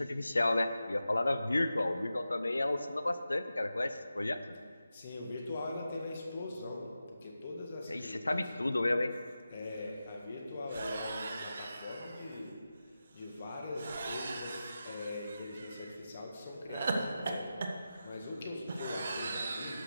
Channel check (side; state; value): both; inverted; correlation -0.92